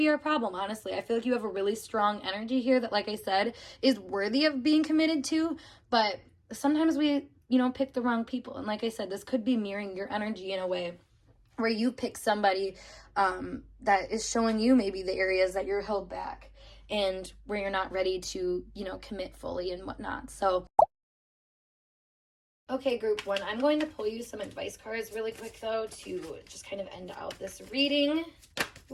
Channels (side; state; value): both; identical; correlation 1.00